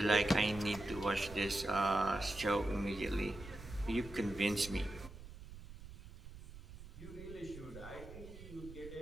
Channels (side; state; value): right; noise; rumble, 15 dB below the sound